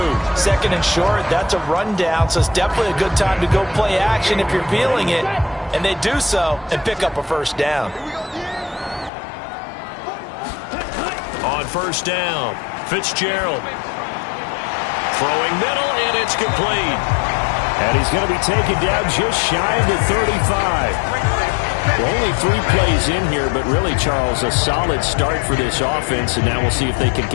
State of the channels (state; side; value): drops out; right; at 9.1 s